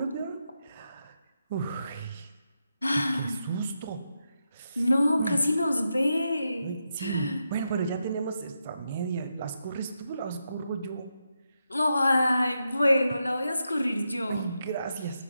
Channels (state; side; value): inverted; both; correlation -0.85